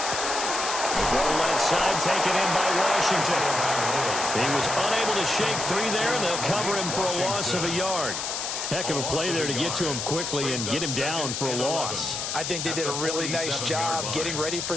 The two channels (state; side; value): noise; left; hiss, 3 dB below the sound